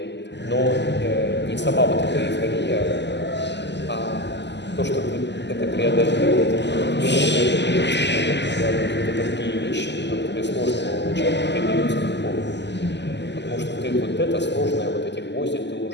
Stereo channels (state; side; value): late; right; 0.51 ms